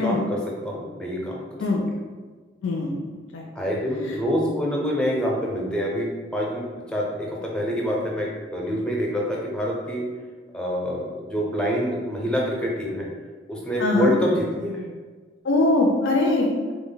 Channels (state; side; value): normal; both; correlation 0.53